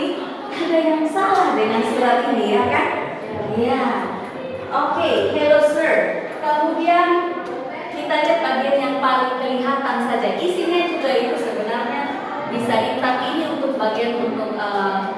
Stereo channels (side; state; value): both; identical; correlation 1.00